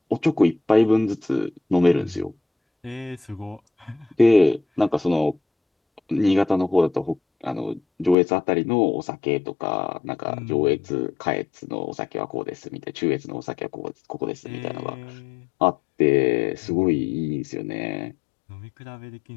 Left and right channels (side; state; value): right; drops out; at 8.2 s